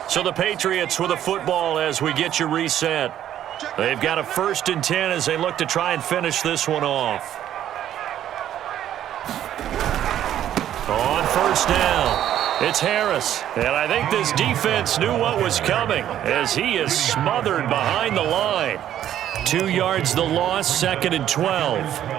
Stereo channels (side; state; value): left; quieter; 11.3 dB